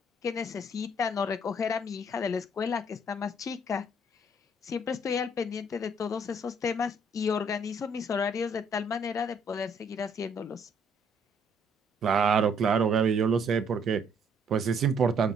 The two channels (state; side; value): normal; both; correlation 0.65